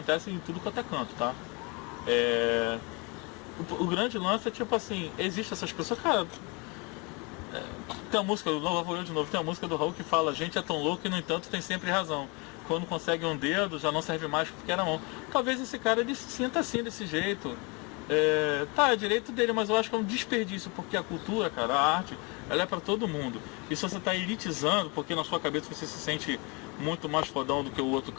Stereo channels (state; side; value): quieter; right; 29.8 dB